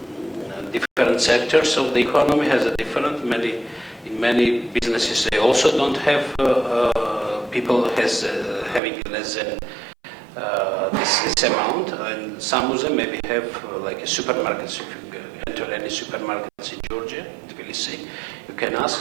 sectors of the economy has a different. In many businesses, they also don't have people having less than this amount, and some of them maybe have like a supermarkets. If you enter any supermarkets in Georgia, Tbilisi, you can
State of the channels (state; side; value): drops out; left; at 8.8 s